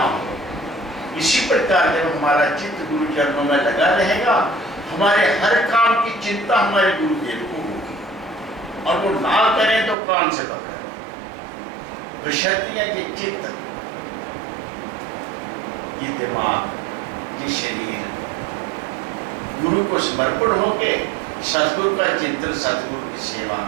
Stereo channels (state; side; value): drops out; left; at 10.0 s